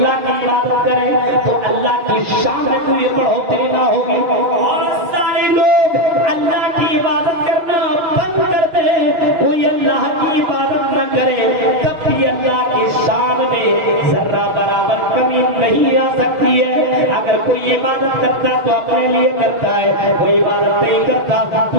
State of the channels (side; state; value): left; late; 6.3 ms